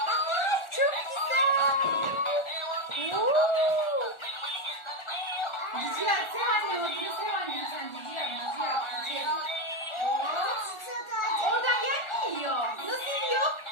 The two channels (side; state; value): right; late; 1.4 ms